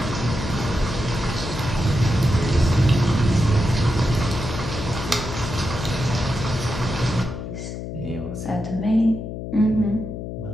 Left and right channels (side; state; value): left; noise; hum, 7 dB below the sound